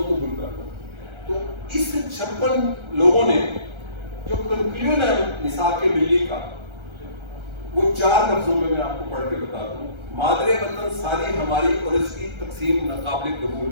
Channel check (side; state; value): left; late; 1.3 ms